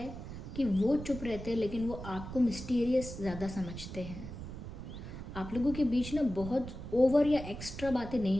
कि वो चुप रहते हैं लेकिन वो आपको मिस्टीरियस ज़्यादा समझते हैं। आप लोगों के बीच ना बहुत ओवर या एक्स्ट्रा बातें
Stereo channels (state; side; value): noise; right; rumble, 10 dB below the sound